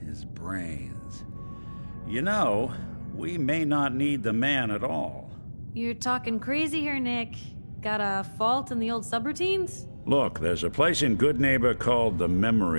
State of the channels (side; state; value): both; inverted; correlation -1.00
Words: His brains. You know, we may not need the man at all. You're talking crazy here, Nick. Got a fault in the old subroutines? Look, there's a place in Goodneighbor called the